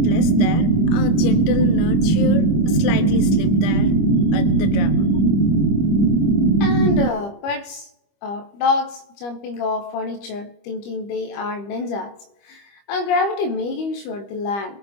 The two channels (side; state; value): right; late; 25 ms